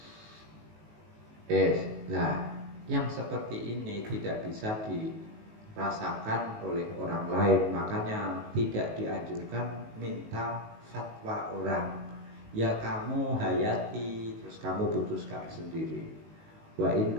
Yang seperti ini tidak bisa dirasakan oleh orang lain, makanya tidak dianjurkan minta fatwa orang. Ya kamu hayati, terus kamu putuskan sendiri. Wa in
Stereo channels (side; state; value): left; late; 19 ms